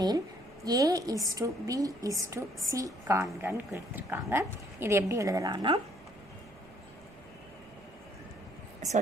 a:b:c காண்கன்னு கொடுத்துருக்காங்க. இது எப்படி எழுதலாம்னா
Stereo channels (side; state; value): right; noise; rumble, 24 dB below the sound